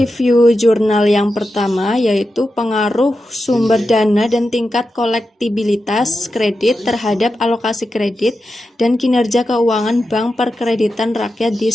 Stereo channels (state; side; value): normal; both; correlation 0.90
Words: jurnal yang pertama yaitu pengaruh sumber dana dan tingkat kolektibilitas kredit terhadap alokasi kredit dan kinerja keuangan Bank Perkreditan Rakyat di